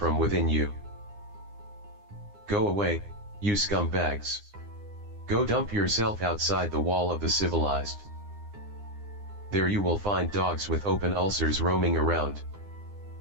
within you. Go away, you scumbags. Go dump yourself outside the wall of the civilized. There you will find dogs with open ulcers roaming around.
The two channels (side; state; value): left; late; 9.8 ms